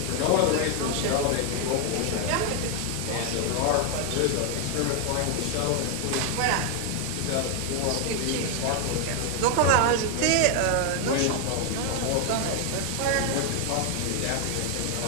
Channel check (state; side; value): different; both; correlation 0.01